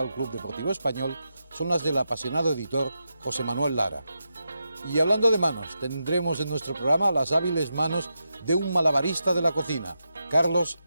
Club Deportivo Español son las del apasionado editor José Manuel Lara. Y hablando de manos, tendremos en nuestro programa las hábiles manos de un malabarista de la cocina, Carlos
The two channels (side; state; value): both; inverted; correlation -0.87